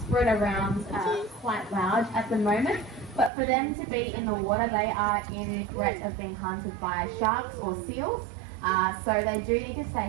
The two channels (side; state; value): left; drops out; at 3.3 s